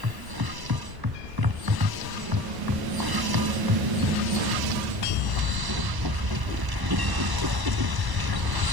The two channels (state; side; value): late; left; 1.0 ms